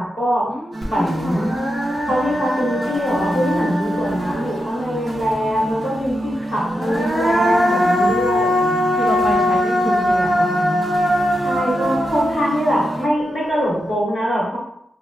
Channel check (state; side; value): normal; both; correlation 0.87